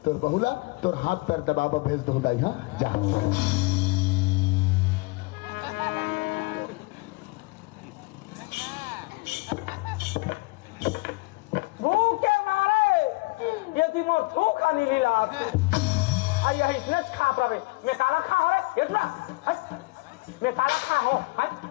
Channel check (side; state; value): right; quieter; 25.0 dB